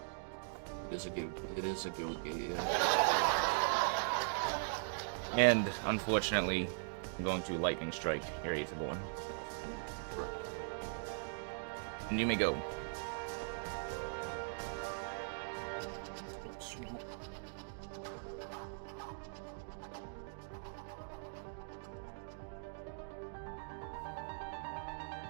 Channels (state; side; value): silent; left; digital silence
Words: It is a guild gate, yeah. And, unfortunately, I'm going to Lightning Strike your Aetherborn. Correct. And you may go.